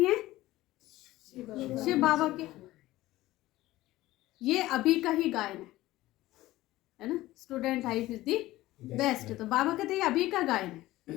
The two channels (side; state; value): right; quieter; 16.9 dB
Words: हैं? शिव बाबा के। ये अभी का ही गायन है ना, student life is the best. तो बाबा कहते हैं अभी का गायन